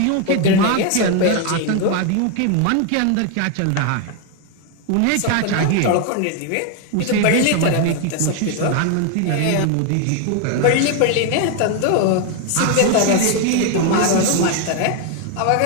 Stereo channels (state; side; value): different; both; correlation 0.01